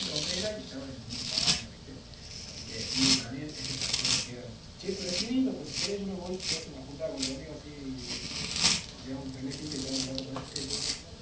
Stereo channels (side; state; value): both; identical; correlation 1.00